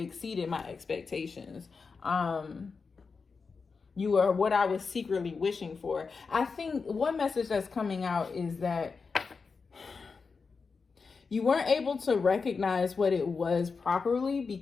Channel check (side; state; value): right; quieter; 4.9 dB